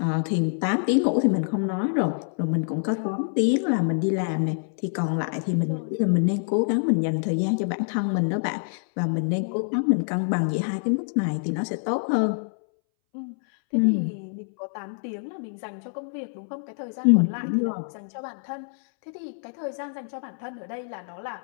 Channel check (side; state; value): right; silent; 61 dB below the other